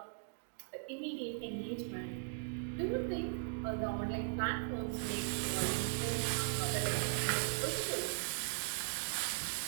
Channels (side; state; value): left; silent; digital silence